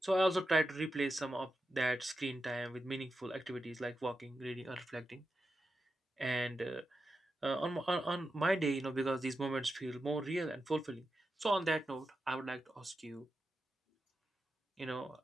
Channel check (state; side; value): normal; both; correlation 0.89